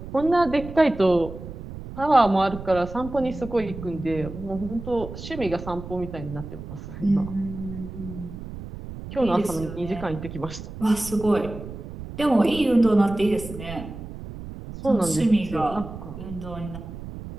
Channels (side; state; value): right; noise; rumble, 11 dB below the sound